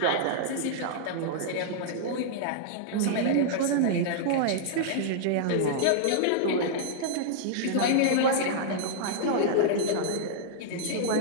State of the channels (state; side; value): different; both; correlation -0.01